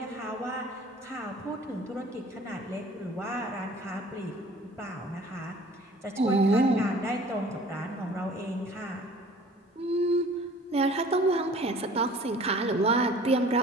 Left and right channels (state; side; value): normal; both; correlation 0.49